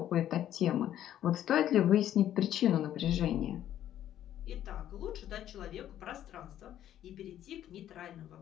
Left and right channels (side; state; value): right; quieter; 11.5 dB